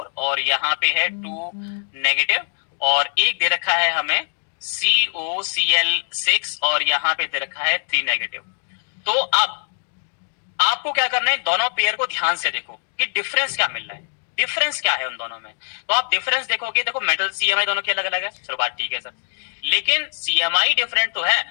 और यहाँ पे है 2 नेगेटिव, और एक दे रखा है हमें COCl6 और यहाँ पे दे रखा है 3 नेगेटिव। तो अब आपको क्या करना है, दोनों पेयर को ध्यान से देखो कि डिफरेंस क्या मिल रहा है, डिफरेंस क्या है उन दोनों में। तो आप डिफरेंस देखोगे, देखो मेटल CMI दोनों के अलग अलग है, चलो बात ठीक है सर, लेकिन CMI डिफरेंट तो है,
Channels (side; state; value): right; silent; digital silence